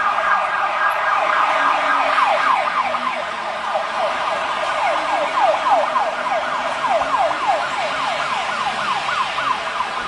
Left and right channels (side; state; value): both; identical; correlation 1.00